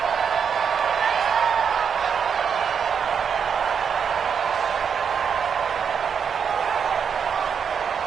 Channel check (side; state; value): left; quieter; 6.9 dB